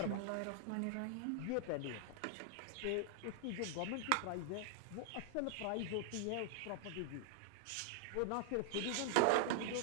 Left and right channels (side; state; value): both; different; correlation 0.00